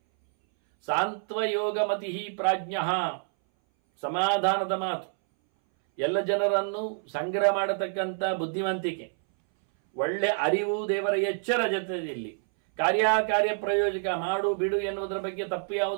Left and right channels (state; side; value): silent; left; 60 dB below the other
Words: ಸಾಂತ್ವಯೋಗ ಮತಿ ಪ್ರಾಜ್ಞ, ಸಮಾಧಾನದ ಮಾತು, ಎಲ್ಲ ಜನರನ್ನು ಸಂಗ್ರಹ ಮಾಡತಕ್ಕಂಥ ಬುದ್ಧಿವಂತಿಕೆ, ಒಳ್ಳೆ ಅರಿವು, ದೇವರ ಎಚ್ಚರ ಜೊತೆಯಲ್ಲಿ ಕಾರ್ಯಕಾರ್ಯ ಪ್ರಯೋಜಕ, ಮಾಡು ಬಿಡು ಎನ್ನುವುದರ ಬಗ್ಗೆ, ತಪ್ಪು